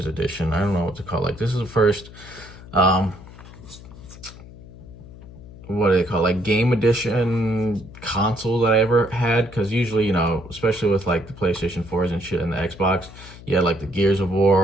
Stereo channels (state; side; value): noise; left; hum, 17 dB below the sound